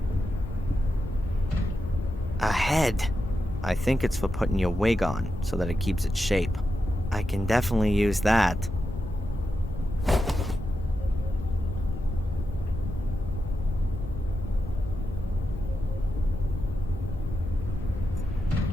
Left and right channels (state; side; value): normal; both; correlation 0.88